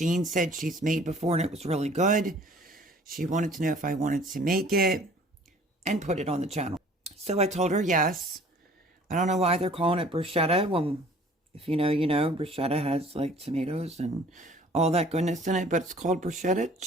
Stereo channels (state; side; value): normal; both; correlation 0.52